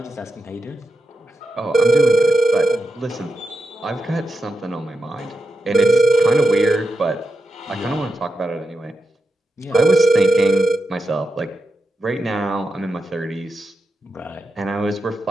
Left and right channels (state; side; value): normal; both; correlation 0.88